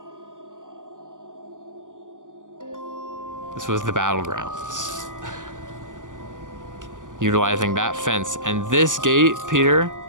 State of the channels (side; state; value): left; late; 0.87 ms